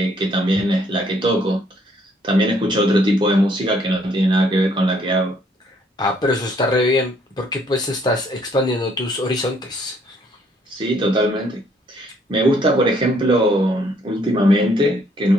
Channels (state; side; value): normal; both; correlation 0.66